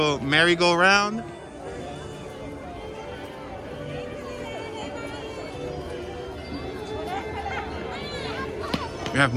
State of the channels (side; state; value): both; identical; correlation 1.00